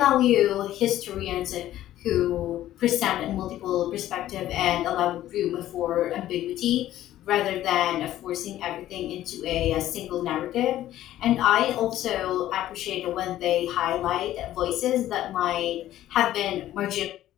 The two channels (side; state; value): right; quieter; 13.4 dB